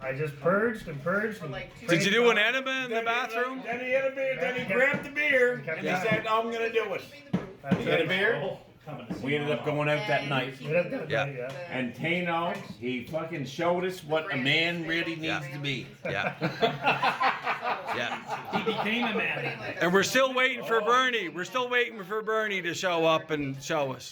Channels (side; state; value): both; identical; correlation 1.00